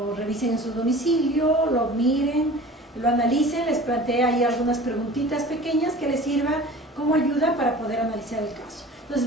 revisen en su domicilio, lo miren, lo analicen. Les planteé ahí algunas preguntitas pequeñas que les sirvan como ayuda para poder analizar el caso. Entonces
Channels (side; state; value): both; normal; correlation 0.41